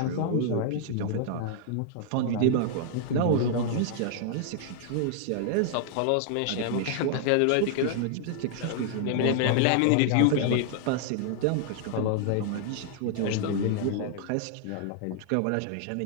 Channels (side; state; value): both; different; correlation -0.01